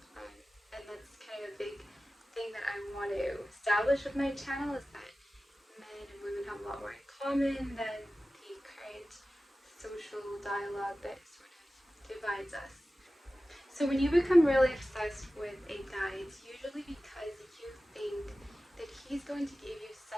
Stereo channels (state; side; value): normal; both; correlation 0.95